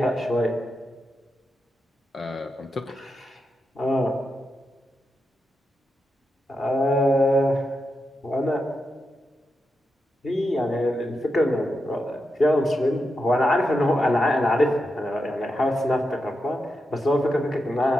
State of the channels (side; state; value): both; normal; correlation 0.87